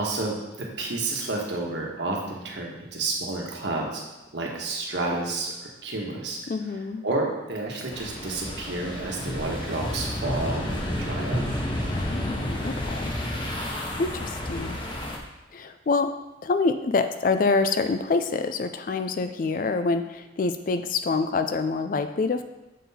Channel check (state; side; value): normal; both; correlation 0.23